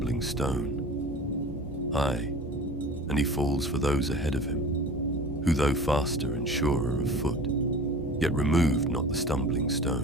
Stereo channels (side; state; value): both; normal; correlation 0.39